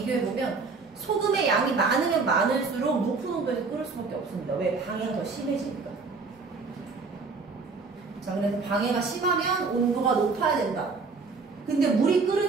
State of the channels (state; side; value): quieter; left; 4.4 dB